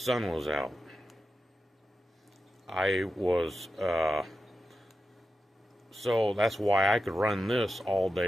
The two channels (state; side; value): normal; both; correlation 0.90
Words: was out. So that's why I could run this all